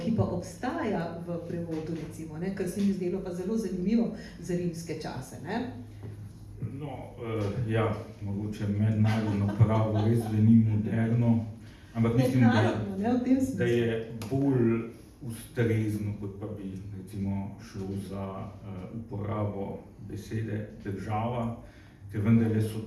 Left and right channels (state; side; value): identical; both; correlation 1.00